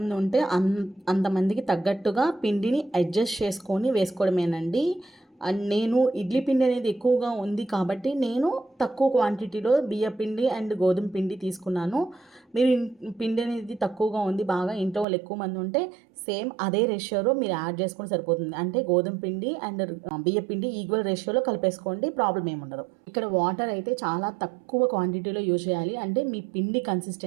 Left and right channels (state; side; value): drops out; left; at 15.1 s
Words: ఉంటే అంతమందికి తగ్గట్టుగా పిండిని అడ్జస్ట్ చేసుకొని వేసుకోవడమేనండి. నేను ఇడ్లీ పిండి అనేది ఎక్కువగా ఉంది కాబట్టి నేను తక్కువ క్వాంటిటీలో బియ్య పిండి అండ్ గోధుమ పిండి తీసుకున్నాను. మీరు పిండి అనేది తక్కువగా ఉంది, బాగా ఇంట్లో వాళ్ళు ఎక్కువ మంది ఉంటే సేమ్ అదే రేషియోలో మీరు యాడ్ చేసుకొని సరిపోతుంది. అంటే గోధుమ పిండి అండ్ బియ్య పిండి ఈక్వల్ రేషియోలో కలిపేసుకోండి, ప్రాబ్లం ఏమి ఉండదు. ఇక్కడ వాటర్ అయితే చాలా తక్కువ క్వాంటిటీలో యూజ్ చేయాలి. అంటే మీ పిండి